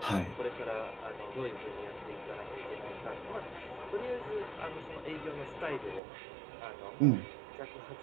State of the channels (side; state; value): left; drops out; at 6.0 s